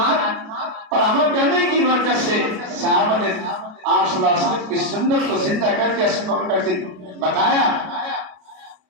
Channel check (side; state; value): left; late; 32 ms